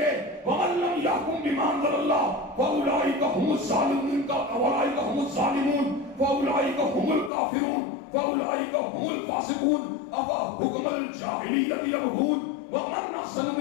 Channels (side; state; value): right; drops out; at 7.3 s